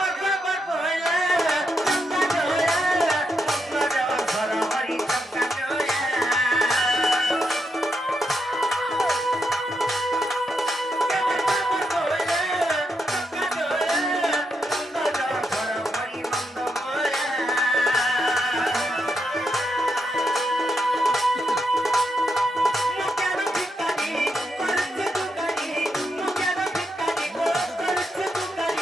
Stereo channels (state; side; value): normal; both; correlation 0.82